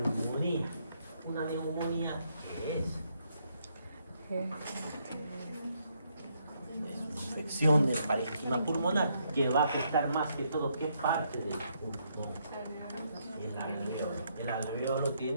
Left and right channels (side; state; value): both; inverted; correlation -0.75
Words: Una neumonía, ¿qué es? Es una infección del parénquima pulmonar que va a afectar más que todo qué parte del pulmón. El alveolo. El alveolo